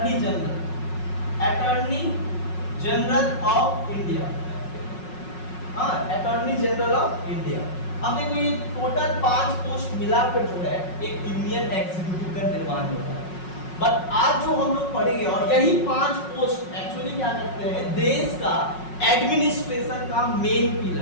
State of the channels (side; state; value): right; late; 5.4 ms